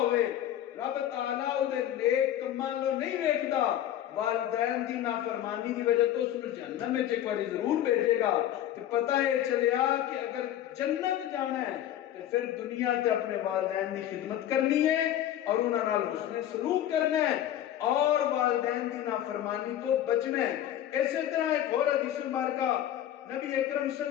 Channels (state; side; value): quieter; right; 11.7 dB